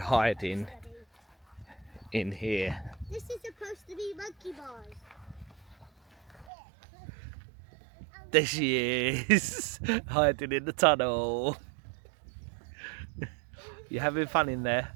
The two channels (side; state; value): left; drops out; at 6.5 s